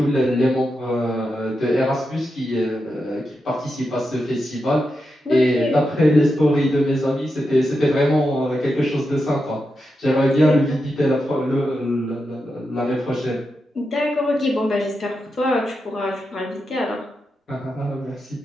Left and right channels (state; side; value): normal; both; correlation 0.87